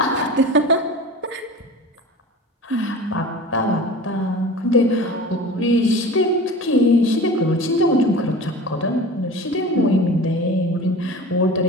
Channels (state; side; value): normal; both; correlation 0.36